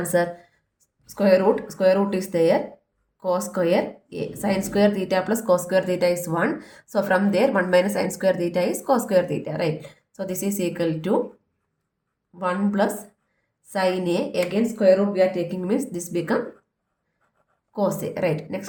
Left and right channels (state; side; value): identical; both; correlation 1.00